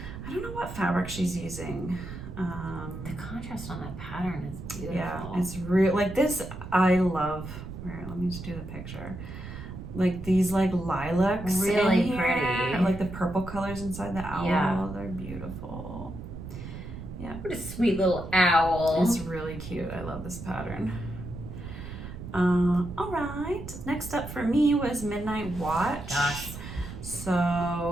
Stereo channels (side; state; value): right; noise; rumble, 10 dB below the sound